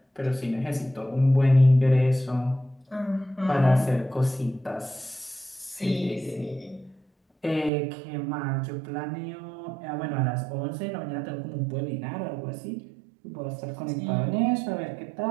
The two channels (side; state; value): left; drops out; at 7.7 s